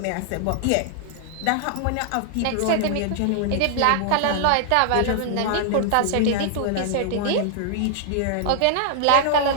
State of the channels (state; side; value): different; both; correlation 0.00